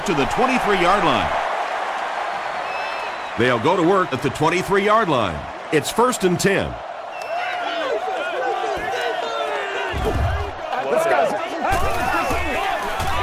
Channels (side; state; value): both; identical; correlation 1.00